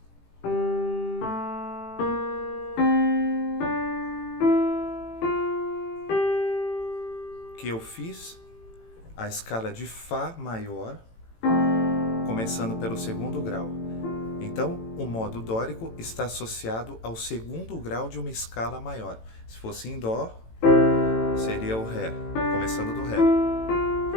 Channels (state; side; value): late; right; 18 ms